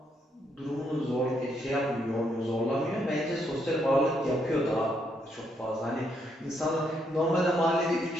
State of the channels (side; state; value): both; normal; correlation 0.75